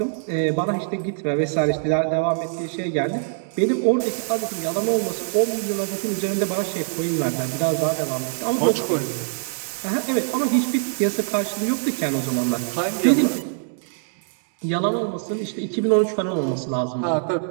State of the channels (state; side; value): silent; left; digital silence